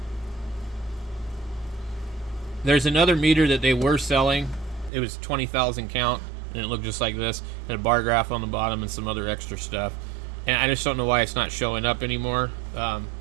There's another meter that they were selling. It was 20,000 count, and it looked just like this. And a bar graph on the bottom and some other extra stuff. And I just don't know why it's not showing up anymore.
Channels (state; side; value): drops out; left; at 4.9 s